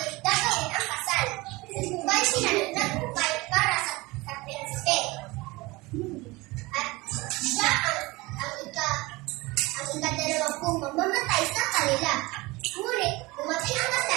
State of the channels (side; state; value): left; quieter; 22.4 dB